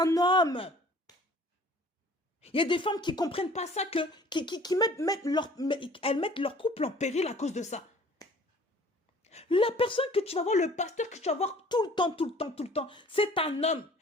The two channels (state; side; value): normal; both; correlation 0.51